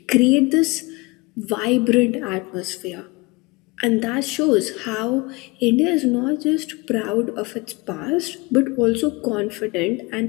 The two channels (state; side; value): quieter; right; 25.4 dB